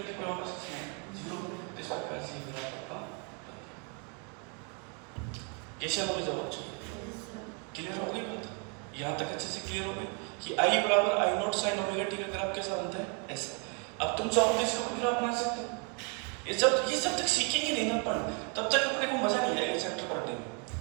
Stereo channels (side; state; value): left; quieter; 36.6 dB